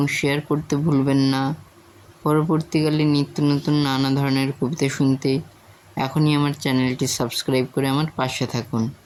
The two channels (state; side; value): identical; both; correlation 1.00